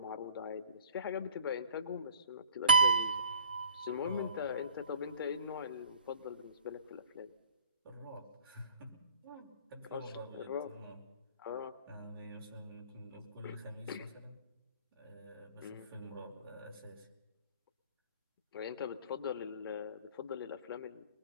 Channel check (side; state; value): both; inverted; correlation -0.47